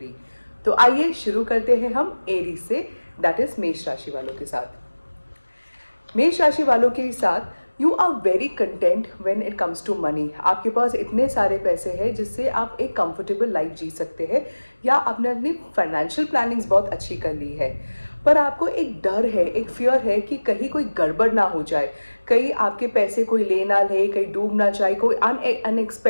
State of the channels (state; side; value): inverted; both; correlation -1.00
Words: तो आइए शुरू करते हैं हम एरीज से, दैट इज मेष राशि वालों के साथ। मेष राशि वालों के साथ you are very content when it comes to money. आपके पास इतने सारे पैसे हैं जिससे आप एक कंफर्टेबल लाइफ जी सकते हैं, या आपने अपनी फाइनेंशियल प्लानिंग्स बहुत अच्छी कर ली है। पर आपको एक डर है, एक फियर है कि कहीं कोई गड़बड़ ना हो जाए, कहीं आपके पैसे कोई ले ना ले, कहीं डूब ना जाए, कोई